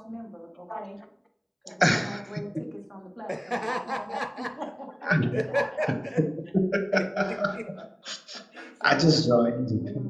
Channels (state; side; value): identical; both; correlation 1.00